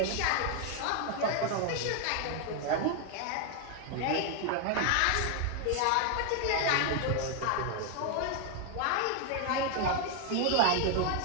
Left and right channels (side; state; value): both; different; correlation 0.01